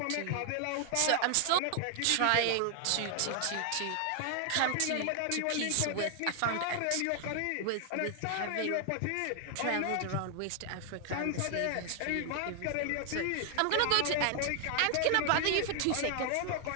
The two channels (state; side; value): different; both; correlation 0.00